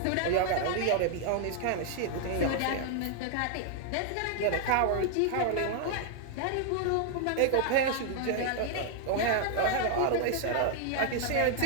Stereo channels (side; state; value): both; different; correlation 0.00